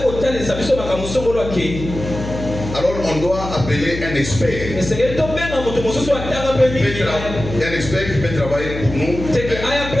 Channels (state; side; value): noise; left; hum, 8 dB below the sound